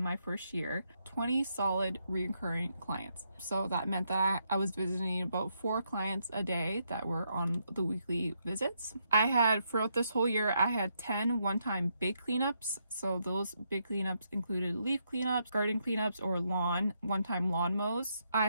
my first year, 20 solid recurring clients. So that meant that I was visiting about 4 clients a day that were on the weekly visits. I had, throughout this whole year, I had 10 one-time big cleanups. So those big cleanups included leaf cleanups, garden cleanups, or one-time lawn mows. I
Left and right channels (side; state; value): both; inverted; correlation -0.78